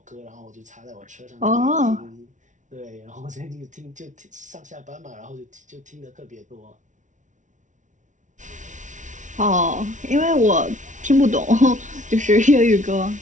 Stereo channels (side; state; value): left; late; 0.36 ms